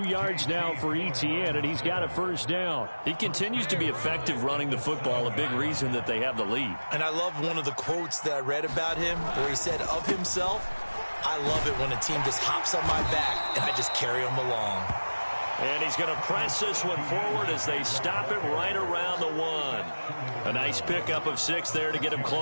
yards now for Etienne, and he's got a first down. He continues to be effective running the football, a big reason that they have the lead. And I love one of the quotes that I read about him where he said of himself, "I love it when a team just hops on my back and I just carry them along." And he's going to press this one forward as they stop him right around the 1. A nice pickup of 6 there to get him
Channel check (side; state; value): both; inverted; correlation -1.00